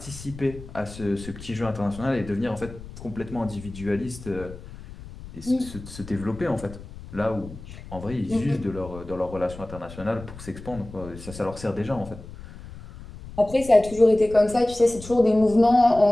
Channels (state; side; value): noise; left; rumble, 15 dB below the sound